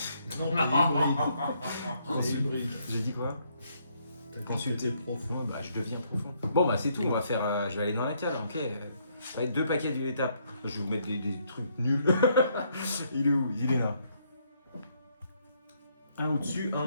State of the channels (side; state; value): both; inverted; correlation -0.71